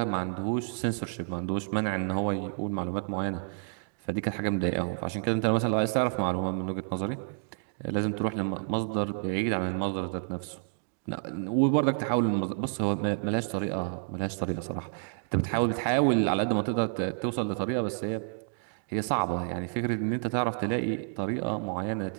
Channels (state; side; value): silent; left; digital silence